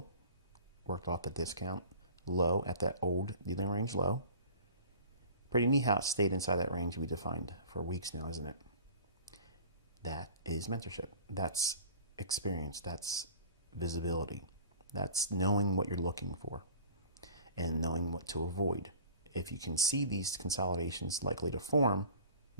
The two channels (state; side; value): inverted; both; correlation -0.43